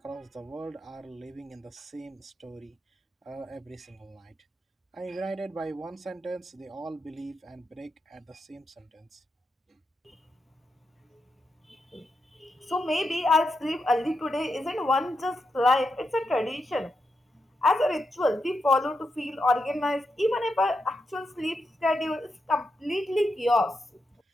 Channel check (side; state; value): both; normal; correlation 0.85